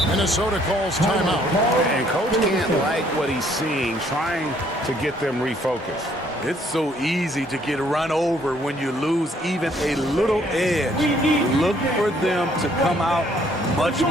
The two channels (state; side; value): normal; both; correlation 0.65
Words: Minnesota calls timeout. And coach can't like what he's seeing, trying to get them refocused. It's so easy to get run over when you lose even a little edge. Look for them to come out much